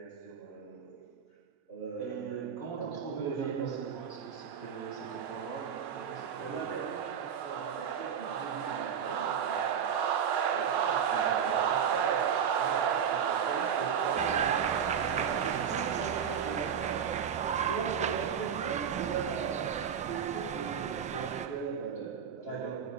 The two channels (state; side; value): quieter; left; 7.7 dB